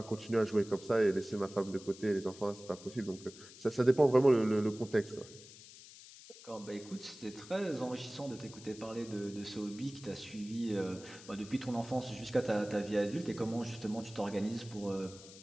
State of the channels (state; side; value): noise; left; hiss, 18 dB below the sound